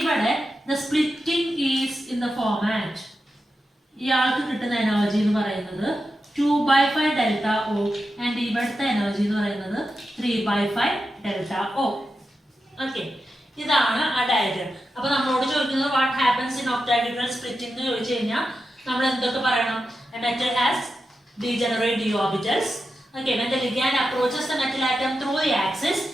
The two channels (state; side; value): normal; both; correlation 0.89